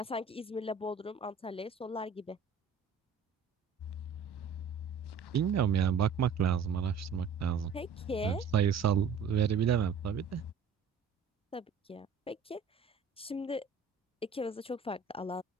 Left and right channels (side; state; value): left; quieter; 5.7 dB